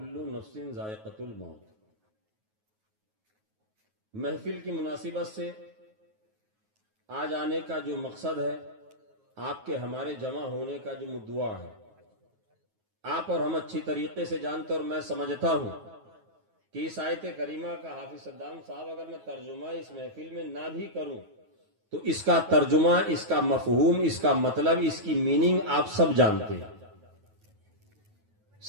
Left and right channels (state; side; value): late; left; 9.3 ms